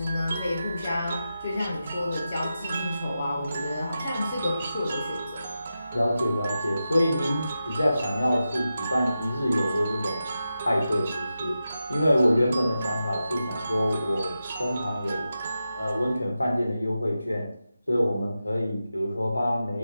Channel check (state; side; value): inverted; both; correlation -0.90